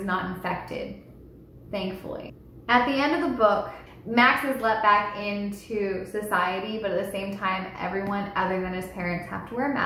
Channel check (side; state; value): both; identical; correlation 1.00